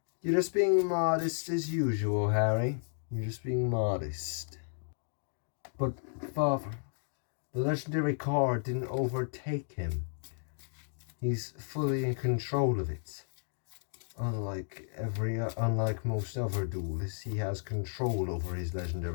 You're just being modest as usual, Harry. You're just being modest. But, Father, the legendary card didn't overtake him. He's fully in control of it. Unlike most other duelists, he has control over his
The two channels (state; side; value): silent; right; digital silence